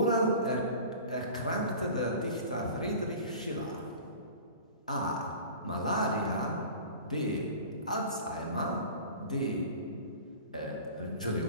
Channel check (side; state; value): both; inverted; correlation -0.39